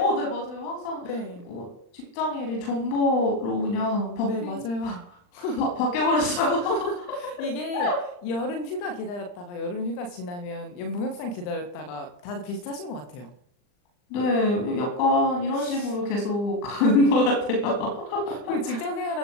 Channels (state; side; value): late; right; 39 ms